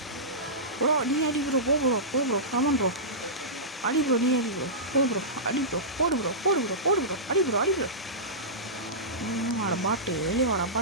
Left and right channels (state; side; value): normal; both; correlation -0.17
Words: ப்ரோ. நீ அடி ப்ரோ போ ப்ரோ ஆமாம் ப்ரோ அடி ப்ரோ. நீ அடி ப்ரோ போ ப்ரோ அடி ப்ரோ போடு ப்ரோ அடி ப்ரோ வாடா பாட்டு வெளியே வாடா